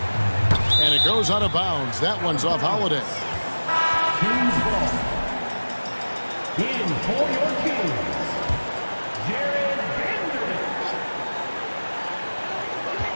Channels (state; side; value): inverted; both; correlation -1.00